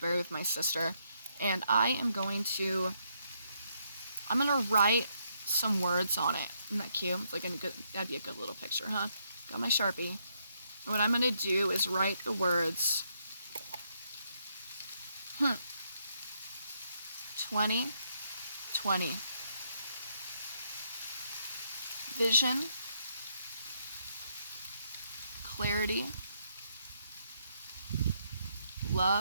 with my sister, and I'm going to write some words on it. Isn't that cute? It's like that'd be a good little picture, huh? Got my Sharpie. And what I'm going to do is write the words 2020. Vision, clarity,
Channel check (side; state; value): both; inverted; correlation -0.75